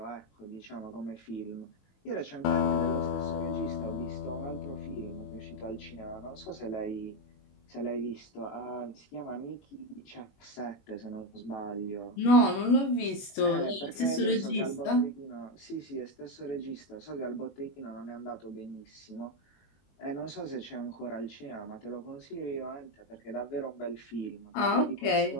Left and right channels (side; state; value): right; late; 21 ms